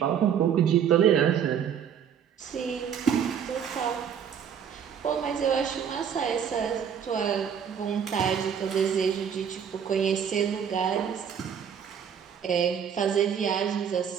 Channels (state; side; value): quieter; left; 8.0 dB